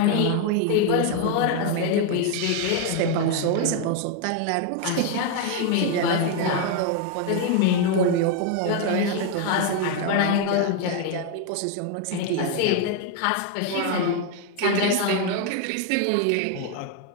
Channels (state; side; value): different; both; correlation 0.01